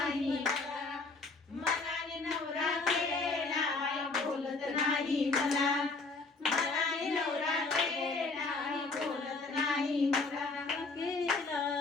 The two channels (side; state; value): right; quieter; 3.8 dB